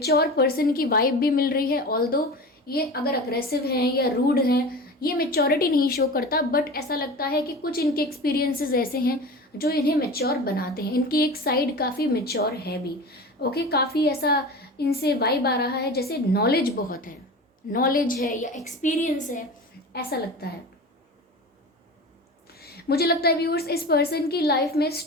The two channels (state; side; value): normal; both; correlation 0.32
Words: पर्सन की वाइब भी मिल रही है। ऑल्दो ये अगर अग्रेसिव हैं या रूड हैं, ये मेच्योरिटी नहीं शो करता, बट ऐसा लगता है कि कुछ इनके एक्सपीरियंसेस ऐसे हैं जो इन्हें मेच्योर बनाते हैं। इनकी एक साइड काफ़ी मेच्योर है भी। ओके, काफ़ी ऐसा इनसे वाइब आ रहा है जैसे नॉलेज बहुत है, नॉलेज है या एक्सपीरियंस है, ऐसा लगता है। मुझे लगता है व्यूअर्स, इस पर्सन की लाइफ में